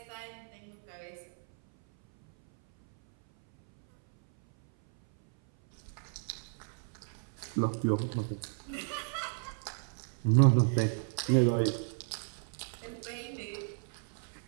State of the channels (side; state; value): left; silent; 55 dB below the other